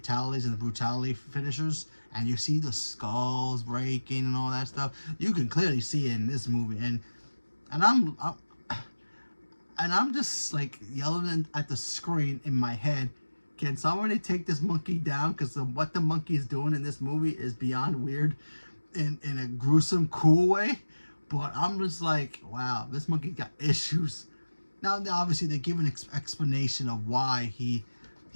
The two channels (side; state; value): both; inverted; correlation -1.00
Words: and the brutality finishers, and you see the skulls breaking and all that stuff, you can clearly see it in this movie. And I'm just like yelling at the screen in my head, can somebody take this monkey down? Because what the monkey is doing in this movie is beyond weird in a gruesome, cool way. But I'm just like, wow, this monkey got issues. Now, obviously, they give an explanation of why